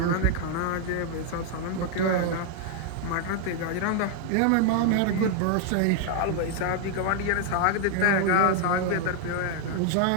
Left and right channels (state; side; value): different; both; correlation 0.00